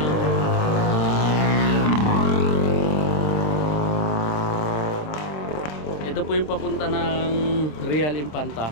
ito po yung papunta ng Real Infanta.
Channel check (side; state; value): right; late; 27 ms